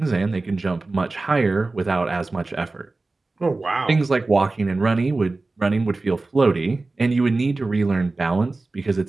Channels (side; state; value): left; quieter; 3.4 dB